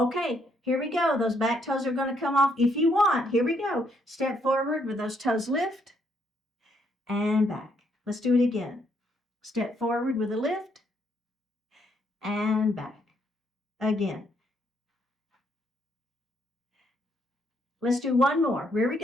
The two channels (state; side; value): normal; both; correlation 0.72